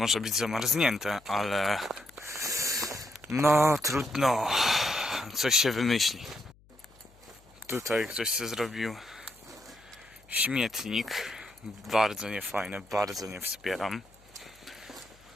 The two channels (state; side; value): noise; left; hum, 28 dB below the sound